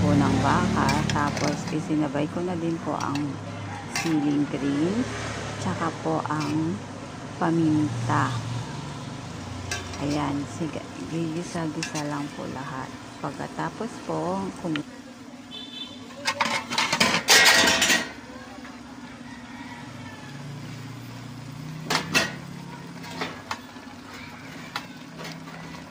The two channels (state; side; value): identical; both; correlation 1.00